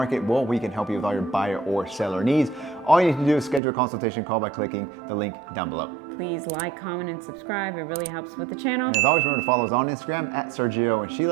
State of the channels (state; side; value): drops out; left; at 3.6 s